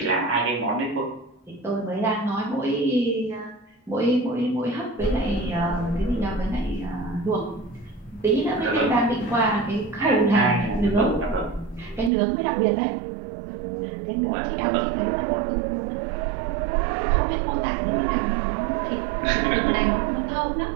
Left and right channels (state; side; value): drops out; left; at 12.1 s